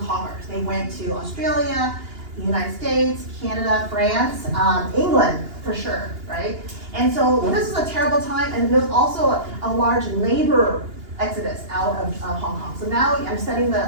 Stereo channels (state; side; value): late; left; 2.8 ms